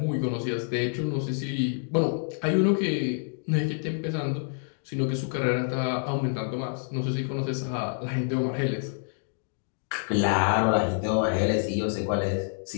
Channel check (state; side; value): silent; right; digital silence